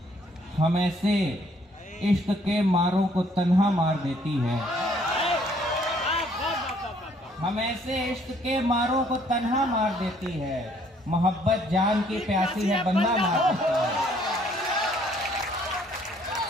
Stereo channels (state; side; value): normal; both; correlation 0.63